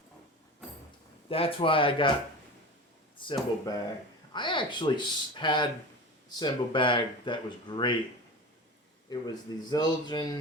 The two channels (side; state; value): both; normal; correlation 0.30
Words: That's why I got cymbal bag. I actually had cymbal bag that was great. It was the